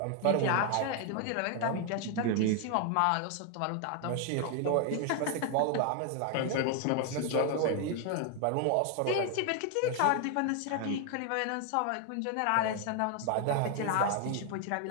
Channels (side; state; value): both; different; correlation 0.00